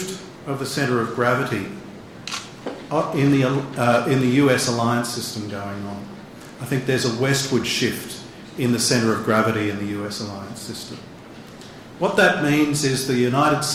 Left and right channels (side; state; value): both; identical; correlation 1.00